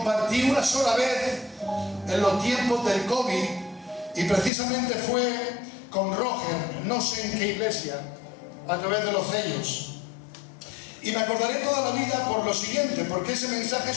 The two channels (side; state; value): right; drops out; at 4.5 s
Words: una sola vez en los tiempos del COVID, y precisamente fue con Roger, no sé en qué iglesia, a través de los sellos. Y me acordaré toda la vida por lo siguiente, porque ese mensaje